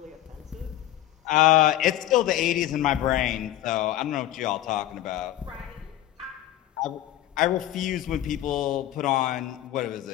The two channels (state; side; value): quieter; right; 13.4 dB